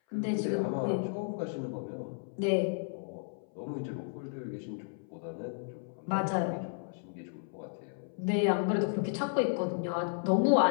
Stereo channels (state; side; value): silent; right; 56 dB below the other